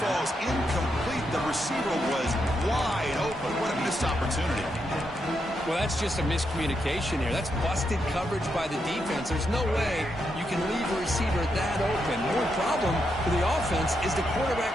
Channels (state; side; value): normal; both; correlation 0.82